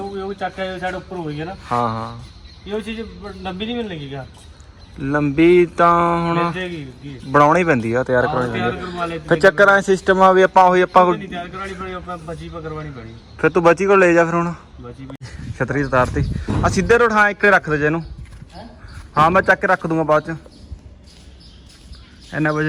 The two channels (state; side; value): identical; both; correlation 1.00